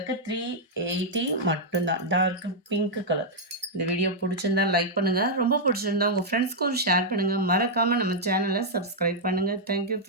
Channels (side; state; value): both; normal; correlation -0.05